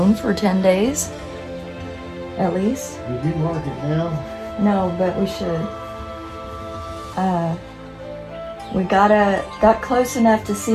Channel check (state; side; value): identical; both; correlation 1.00